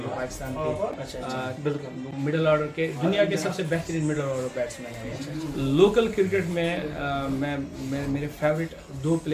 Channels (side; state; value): both; identical; correlation 1.00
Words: पाकिस्तान के अच्छा, बिल्कुल मिडल ऑर्डर के दुनिया के सबसे बेहतरीन मिडल ऑर्डर बैट्समैन हैं। लोकल क्रिकेट में मैं मेरे फेवरेट 2